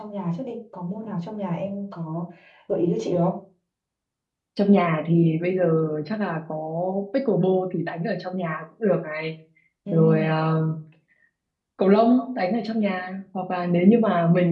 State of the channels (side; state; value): both; identical; correlation 1.00